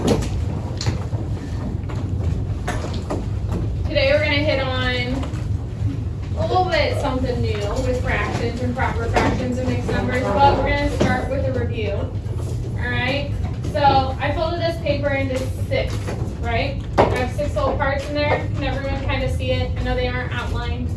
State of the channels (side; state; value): both; identical; correlation 1.00